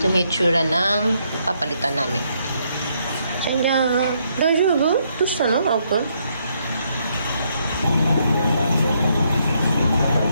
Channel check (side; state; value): both; inverted; correlation -0.74